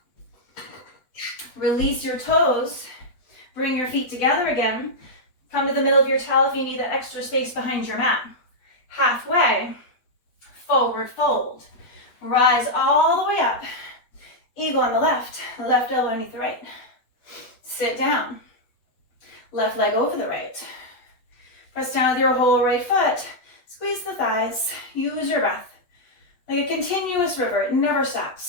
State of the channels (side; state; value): right; late; 8.1 ms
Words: Release your toes. Bring your feet together again. Come to the middle of your towel if you need that extra space behind your mat. Halfway, forward fold. Rise all the way up. Eagle on the left elbow underneath the right. Sit down. Left leg over the right. Press down with your whole right foot. Squeeze the thighs. Use your breath. Like a continuous river, it never